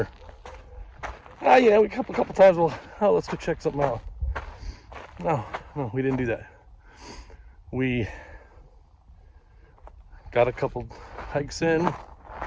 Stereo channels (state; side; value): identical; both; correlation 1.00